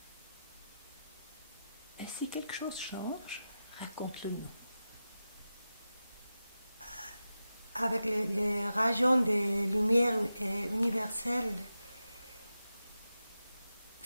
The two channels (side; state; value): both; inverted; correlation -0.92